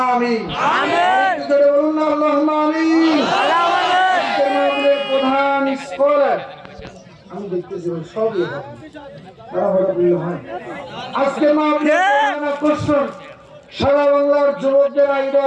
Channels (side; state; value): both; identical; correlation 1.00